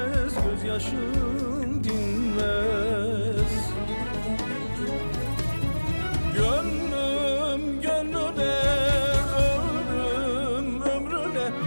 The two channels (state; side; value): inverted; both; correlation -1.00